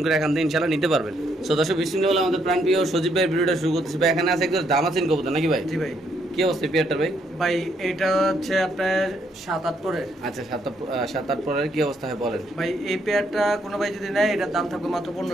করে এখান থেকে ইনশাআল্লাহ নিতে পারবেন। সো দর্শক বিসমিল্লাহ আমাদের প্রাণপ্রিয় সজীব ভাইয়ের ভিডিওটা শুরু করতেছি। ভাই এখানে আছে একদম দামাচিন কবুতর নাকি ভাই? জি ভাই। কি অবস্থা পেয়ারটার ভাই? ভাই এটা হচ্ছে আপনার 7-8 পরের। আচ্ছা 7-8 পরের কি অবস্থা হয় বলেন ভাই এই পেয়ারটা কোনো ভাই যদি নেয় এটার দাম থাকবে মাত্র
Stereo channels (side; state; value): both; normal; correlation 0.73